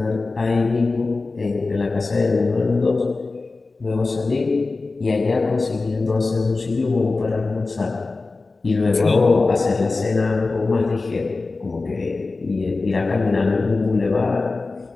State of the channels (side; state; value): right; quieter; 3.7 dB